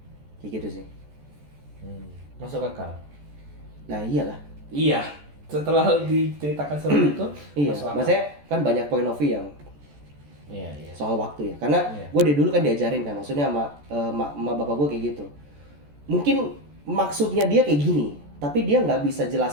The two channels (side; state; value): left; late; 14 ms